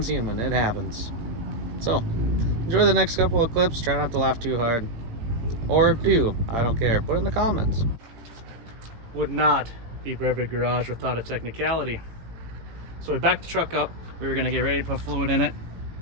human, it happens. So, enjoy the next couple of clips, try not to laugh too hard. Or do, I don't care, put it in the comments. Would not be Brevard Garage without a technicality. So we backed the truck up, we were gonna get ready to put fluid in it,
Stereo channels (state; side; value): late; left; 18 ms